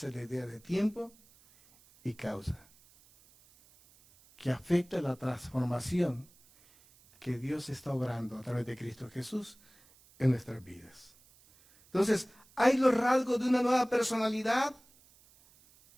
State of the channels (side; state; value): right; noise; hiss, 28 dB below the sound